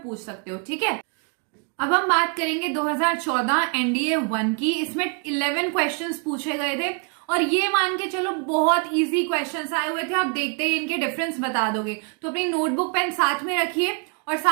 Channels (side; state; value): left; quieter; 38.2 dB